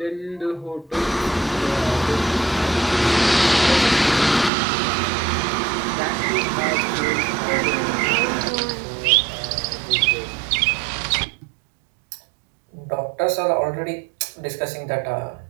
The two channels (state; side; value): drops out; left; at 4.5 s